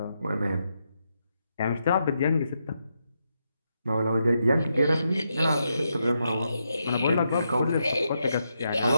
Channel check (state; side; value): inverted; both; correlation -0.83